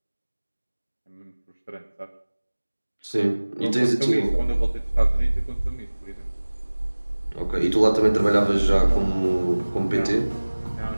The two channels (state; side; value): inverted; both; correlation -1.00